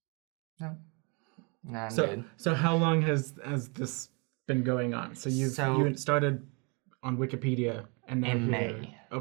no, I'm good. So how long has this been going on? So you started on Wikipedia, and now in May.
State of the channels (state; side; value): quieter; left; 32.4 dB